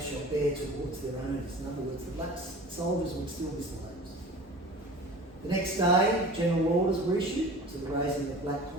shall bear towards their owners. In other words, the black soldiers would still be slaves. The next day, general orders were issued to the raising of black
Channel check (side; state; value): both; normal; correlation 0.39